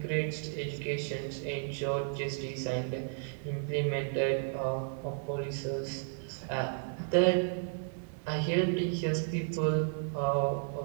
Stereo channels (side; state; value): left; silent; digital silence